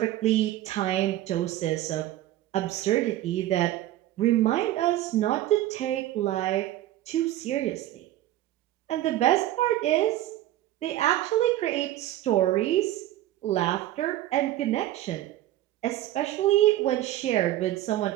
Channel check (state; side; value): quieter; left; 14.3 dB